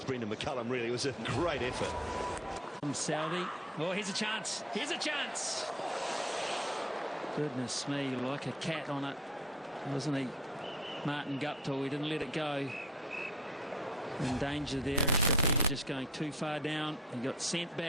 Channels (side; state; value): both; normal; correlation 0.49